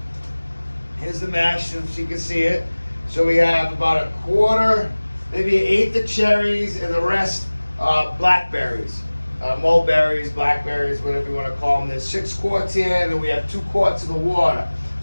Here's the mash, so you can see it. So we have about a quarter, maybe an eighth of cherries, and the rest blackberries. Mulberries, blackberries, whatever you want to call them. There's 6 quarts here, and then we have 2 quarts of the water.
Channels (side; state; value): both; inverted; correlation -1.00